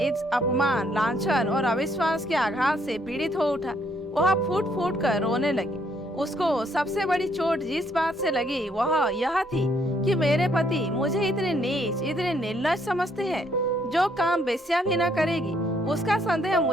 इस अपमान, लांछन और अविश्वास के आघात से पीड़ित हो उठा। वह फूट फूट कर रोने लगी। उसको सबसे बड़ी चोट जिस बात से लगी वह यह थी कि मेरे पति मुझे इतने नीच, इतने निर्लज समझते हैं, जो काम बेस्या भी न करेगी उसका संदेह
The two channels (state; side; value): normal; both; correlation 0.69